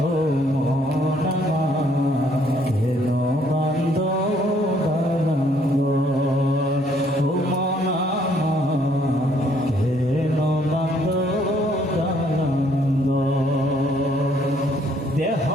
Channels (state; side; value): normal; both; correlation 0.65